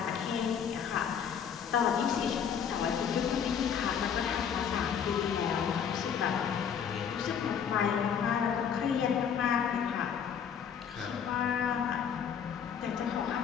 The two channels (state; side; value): quieter; right; 7.7 dB